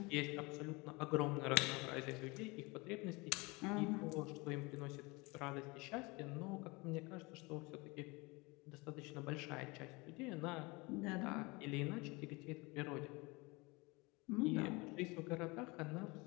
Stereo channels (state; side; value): quieter; right; 25.5 dB